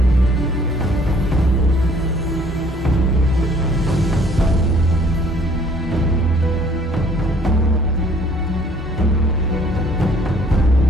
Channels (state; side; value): normal; both; correlation 0.58